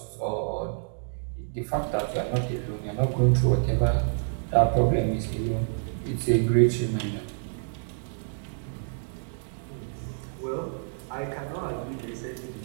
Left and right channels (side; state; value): left; silent; digital silence